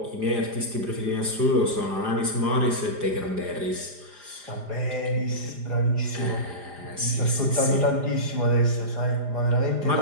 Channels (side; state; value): left; late; 4.9 ms